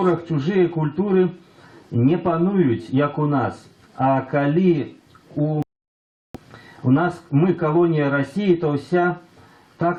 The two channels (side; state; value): both; identical; correlation 1.00